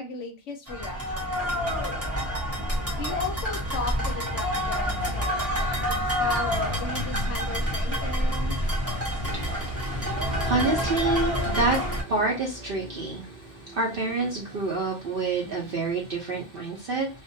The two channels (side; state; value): both; normal; correlation 0.28